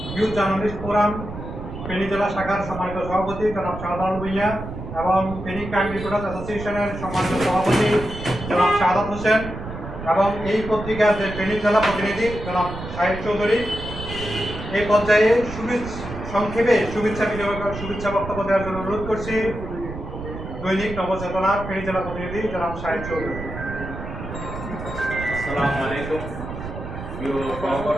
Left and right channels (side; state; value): right; noise; rumble, 9 dB below the sound